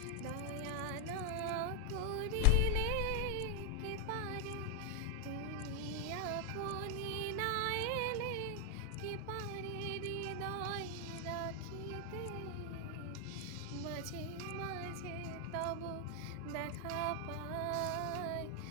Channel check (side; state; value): both; different; correlation 0.00